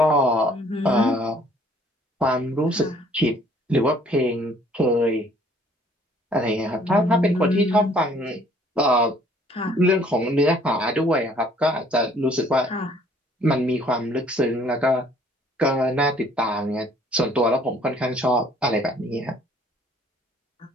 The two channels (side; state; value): both; normal; correlation 0.59